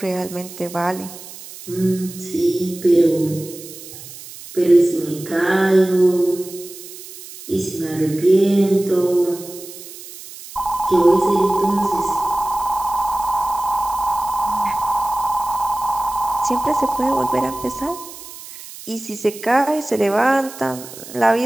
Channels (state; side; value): noise; right; hiss, 15 dB below the sound